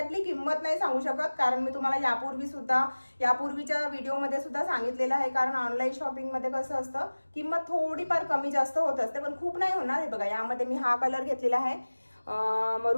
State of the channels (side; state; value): both; inverted; correlation -1.00